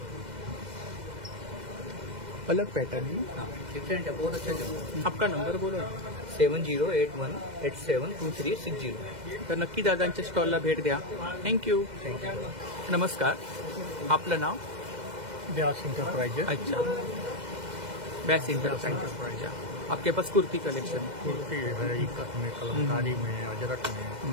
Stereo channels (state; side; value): late; left; 2.1 ms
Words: अलग पैटर्न है। हाँ डिफरेंट है, बहुत अच्छा चल। आपका नंबर बोला 7081872360। तर नक्की दादांच्या स्टॉलला भेट द्या. थँक्यू. नमस्कार, आपलं नाव? व्यास इंटरप्राइजेस। अच्छा, बैस इंटरप्राइज. आपके पास कुर्ती कलेक्शन है. कुर्ती है, इकत में, कलमकारी में, अजरक में।